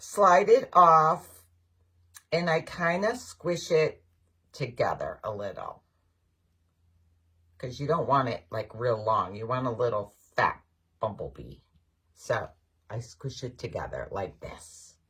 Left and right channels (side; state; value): both; identical; correlation 1.00